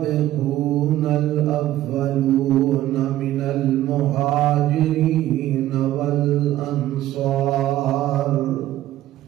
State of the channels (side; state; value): left; quieter; 14.1 dB